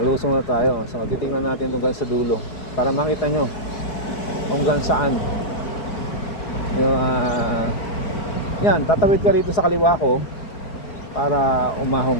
na tayo. So titingnan natin hanggang sa dulo para makita nyo hanggang saan. Yan, tatawid ka rito sa kaliwa ko para umahon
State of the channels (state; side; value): late; right; 4.8 ms